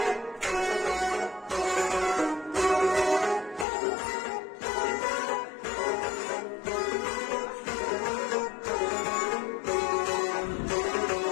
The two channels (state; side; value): drops out; right; at 3.7 s